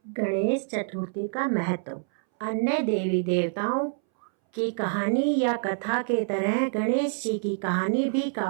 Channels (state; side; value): silent; left; 60 dB below the other